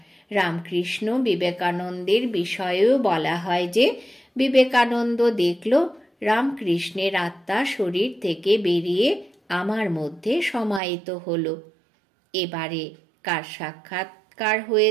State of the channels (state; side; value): drops out; left; at 10.8 s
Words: রামকৃষ্ণ বিবেকানন্দের বিষয়েও বলা হয় যে বিবেকানন্দ দেখল রামকৃষ্ণের আত্মা শরীর থেকে বেরিয়ে আমার মধ্যে সমাহিত হলো। এবারে কার সাক্ষাৎকার